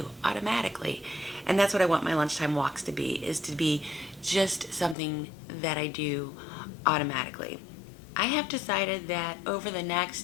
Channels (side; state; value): right; drops out; at 5.0 s